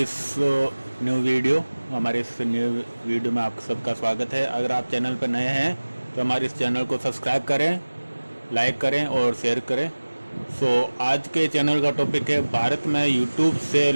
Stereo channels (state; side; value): inverted; both; correlation -1.00